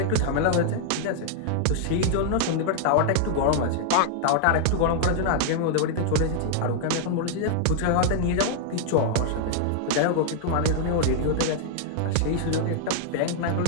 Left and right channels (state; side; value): different; both; correlation 0.00